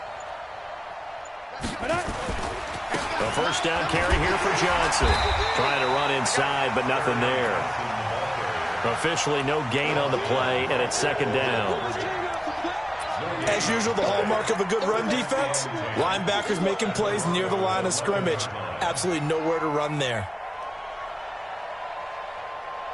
The first down carry here for Johnson. Trying to run inside, but nothing there. Officially no gain on the play, and it's 2nd down. As usual, the hallmark of a good run defense, linebackers making plays near the line of scrimmage. Absolutely nowhere to run there.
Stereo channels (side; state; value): both; identical; correlation 1.00